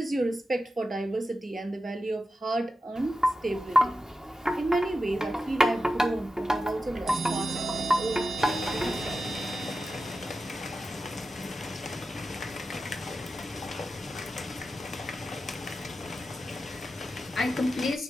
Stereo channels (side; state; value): both; normal; correlation 0.91